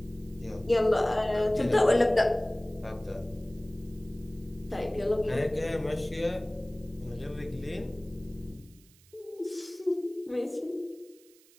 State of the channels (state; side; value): noise; right; hiss, 28 dB below the sound